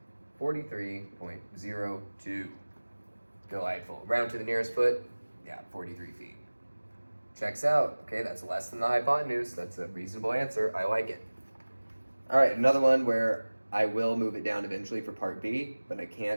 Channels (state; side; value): inverted; both; correlation -1.00